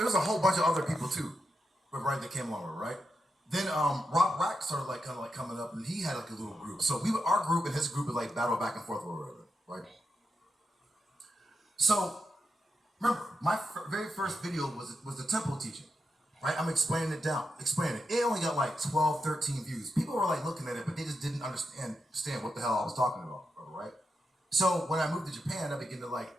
a whole bunch of other people too, right, that came along with it, right? Then Rob Rack started like kind of like coming up, and he had like a little group. So our group and his group would like battle back and forth or whatever, right? So remember, my very first video was the temple teaching, right? I'm explaining it. It only got like 12, 13 views. People were like looking at it, but they just didn't understand what the hell I was talking about, right? So when I moved to Japan, I began to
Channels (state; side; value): normal; both; correlation 0.86